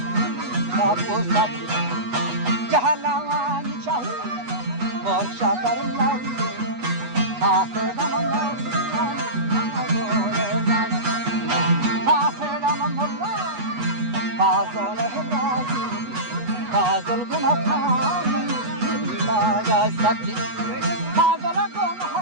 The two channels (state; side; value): late; left; 8.2 ms